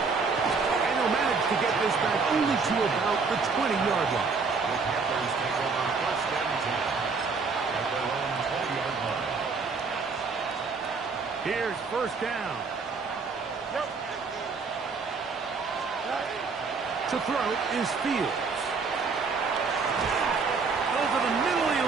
he'll manage to get this back only to about the 20-yard line. The Panthers take over 1st and 10 at their own 20-yard line. Here's 1st down. To throw is Fields. Over the middle he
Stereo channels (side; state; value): left; quieter; 4.7 dB